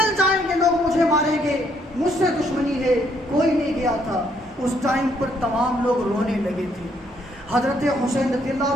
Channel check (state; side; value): normal; both; correlation 0.70